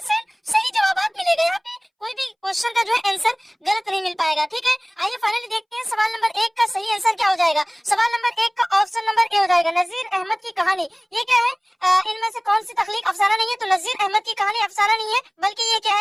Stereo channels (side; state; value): both; identical; correlation 1.00